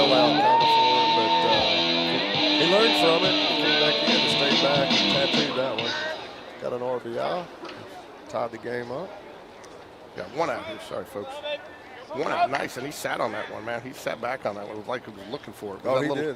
kind of for him, but he learned from it. He came back in and stayed back and tattooed that one. Got an RBI. Tied the game up. Got one out here. Sorry, folks. One out. Nice, and he sat on that one, man. He sat back on that one. It was like he was looking for it. He did.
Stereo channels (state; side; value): identical; both; correlation 1.00